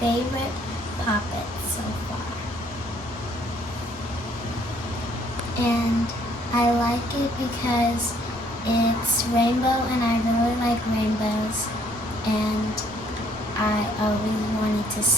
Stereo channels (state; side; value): normal; both; correlation 0.64